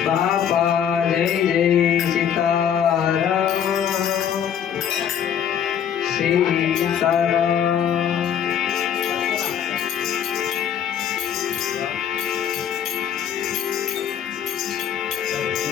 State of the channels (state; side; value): quieter; right; 8.8 dB